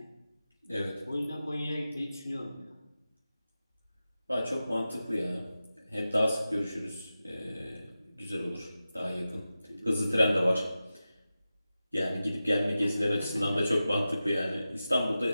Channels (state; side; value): inverted; both; correlation -0.93